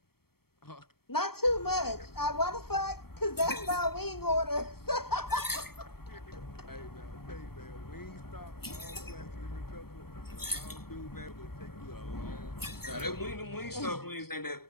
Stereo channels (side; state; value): right; late; 0.95 ms